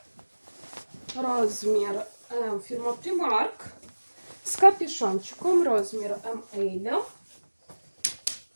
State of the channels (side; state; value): both; inverted; correlation -1.00